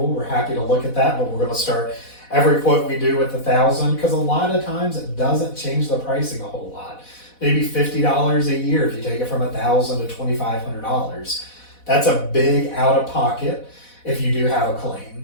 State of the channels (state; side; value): late; right; 4.1 ms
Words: we're happy to look at that, but we're going to start every quote we do with $1,000 because a lot of times it doesn't change the pricing a whole lot. Maybe $50 a year if you take it from $1,000 to $2,500. That's a big out of pocket if you do have a